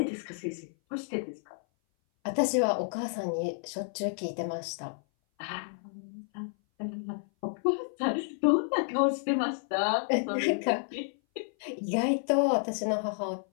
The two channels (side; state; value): right; silent; 57 dB below the other